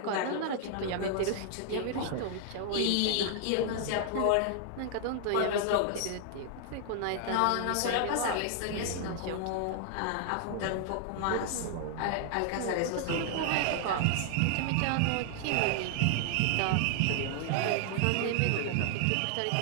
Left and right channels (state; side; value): different; both; correlation 0.00